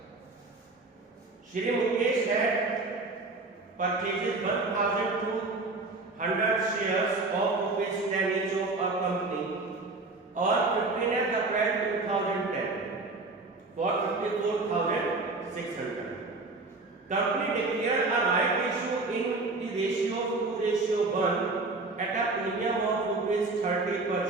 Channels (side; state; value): left; quieter; 3.5 dB